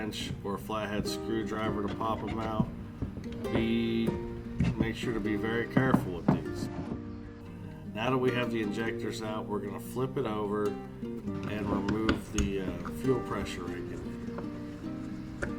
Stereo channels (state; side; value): identical; both; correlation 1.00